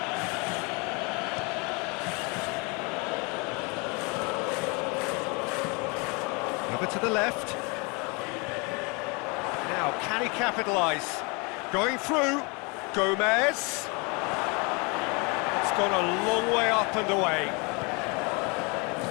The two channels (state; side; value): quieter; right; 30.4 dB